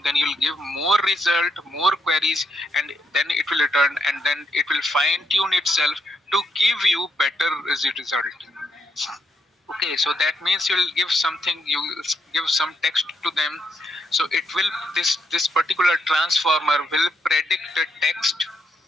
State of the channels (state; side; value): normal; both; correlation 0.78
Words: then you'll give more result, more queries, and then it will return, and then it will fine tune itself to give you better result. Okay, so that means you'll give something, you give some text to them. So it will, this particular transformer will predict the text.